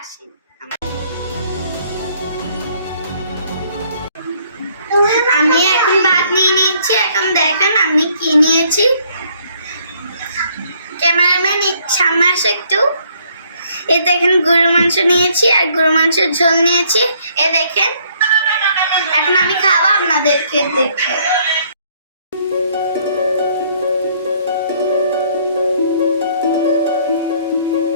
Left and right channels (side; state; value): both; inverted; correlation -0.65